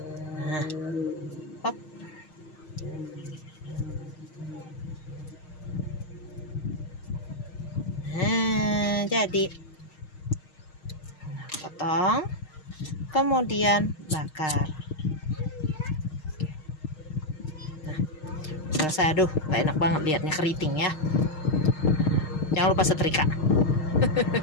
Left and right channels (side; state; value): right; late; 6.5 ms